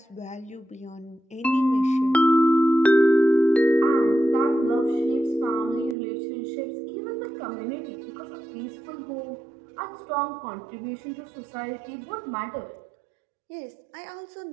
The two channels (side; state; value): left; drops out; at 6.0 s